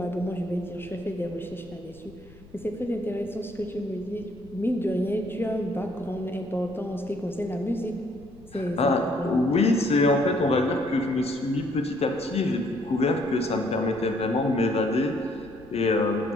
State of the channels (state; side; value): noise; left; rumble, 22 dB below the sound